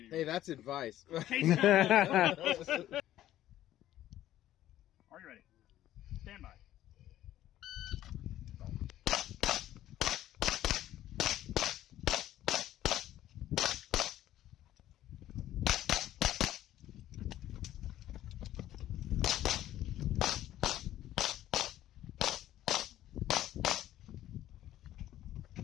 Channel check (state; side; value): quieter; right; 13.2 dB